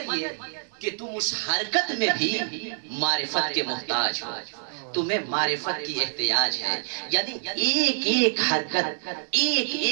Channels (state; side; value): silent; left; digital silence